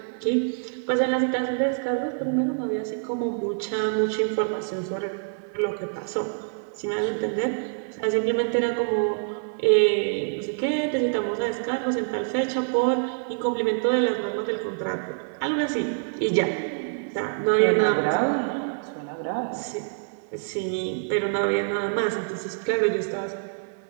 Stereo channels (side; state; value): left; silent; 61 dB below the other